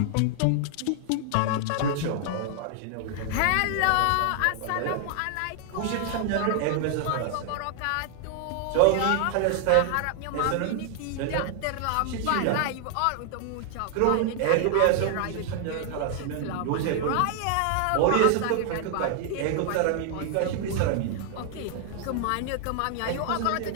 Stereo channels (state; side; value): different; both; correlation 0.00